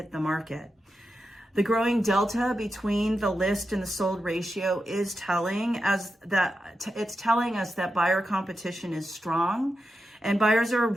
the market. The growing delta between the list and the sold ratio is telling us that buyer competition is strong and buyers are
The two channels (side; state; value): both; normal; correlation 0.89